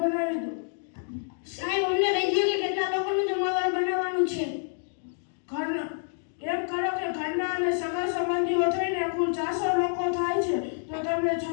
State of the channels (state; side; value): silent; right; digital silence